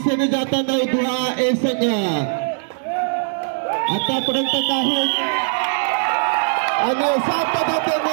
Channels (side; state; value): left; silent; digital silence